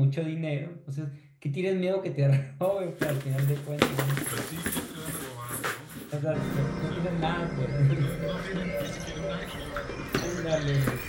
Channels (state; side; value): identical; both; correlation 1.00